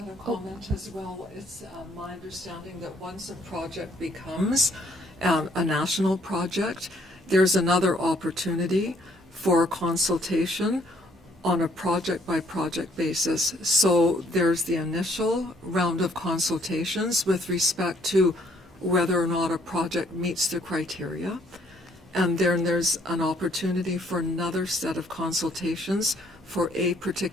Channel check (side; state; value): both; normal; correlation 0.65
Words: a comment as well? It's my understanding that once a project becomes a national project, there's another opportunity for consultation on a project-by-project basis. So there's the initial round of consultations with respect to whether or not a project meets the criteria. And then there's an opportunity for another set of consultations for a